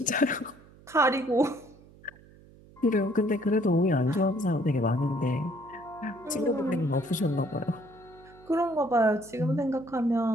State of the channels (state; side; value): noise; right; hum, 24 dB below the sound